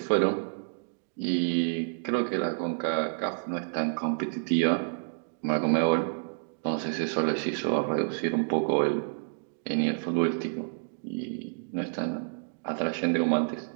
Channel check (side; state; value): left; silent; digital silence